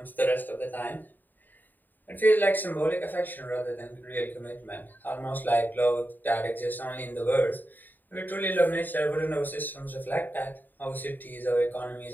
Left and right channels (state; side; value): late; right; 0.089 ms